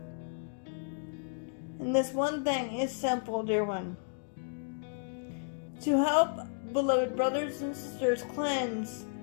And this one thing is simple, dear one. To help beloved brothers and sisters cleanse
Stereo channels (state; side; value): silent; right; digital silence